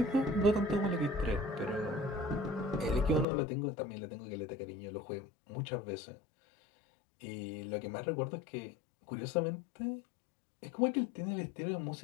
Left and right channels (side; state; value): right; drops out; at 3.2 s